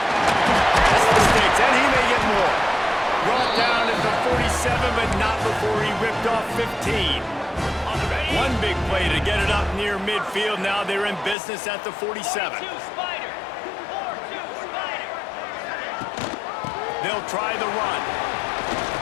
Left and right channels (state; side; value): drops out; right; at 11.4 s